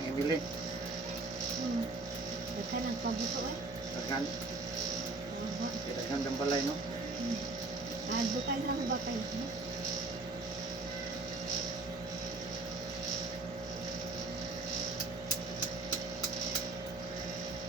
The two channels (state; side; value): quieter; left; 3.4 dB